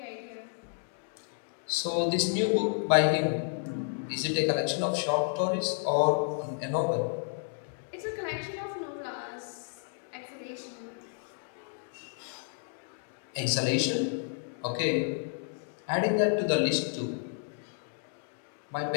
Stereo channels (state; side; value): silent; right; digital silence